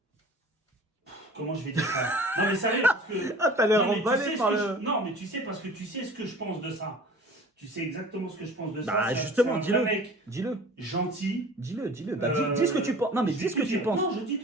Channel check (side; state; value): both; normal; correlation 0.44